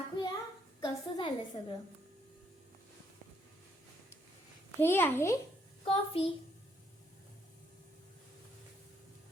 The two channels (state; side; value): normal; both; correlation 0.71